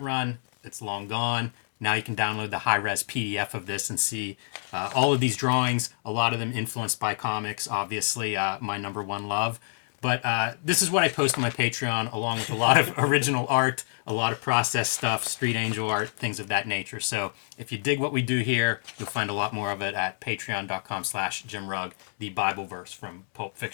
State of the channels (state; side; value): silent; right; digital silence